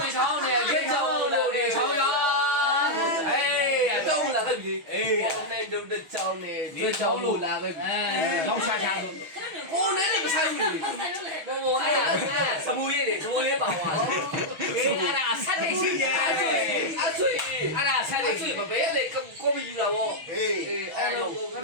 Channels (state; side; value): late; left; 6.2 ms